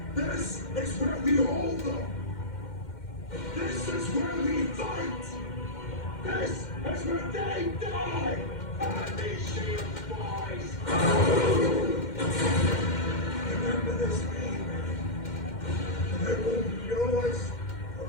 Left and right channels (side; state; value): right; late; 2.1 ms